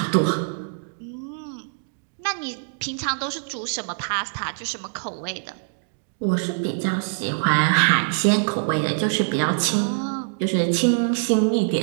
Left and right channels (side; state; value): left; silent; digital silence